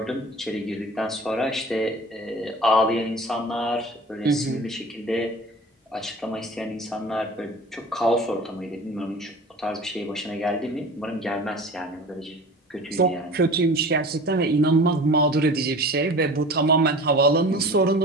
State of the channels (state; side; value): normal; both; correlation 0.39